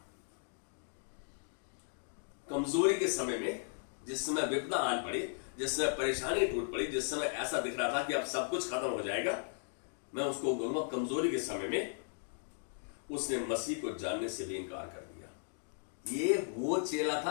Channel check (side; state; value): right; silent; digital silence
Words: कमजोरी के समय में, जिस समय विपदा आन पड़ी, जिस समय परेशानी टूट पड़ी, जिस समय ऐसा दिख रहा था कि अब सब कुछ खत्म हो जाएगा, मैं उसको कहूंगा कमजोरी के समय में उसने मसीह को जानने से भी इनकार कर दिया। ये वो चेला